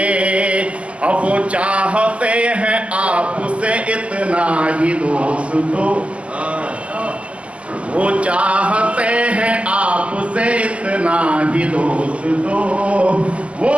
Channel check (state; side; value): late; left; 0.059 ms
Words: अब वो चाहते हैं आपसे इतना ही दोस्तों, वो चाहते हैं आपसे इतना ही दोस्तों, वो